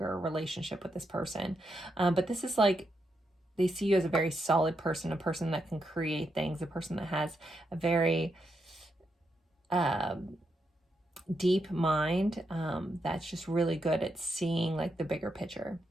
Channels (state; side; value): normal; both; correlation 0.82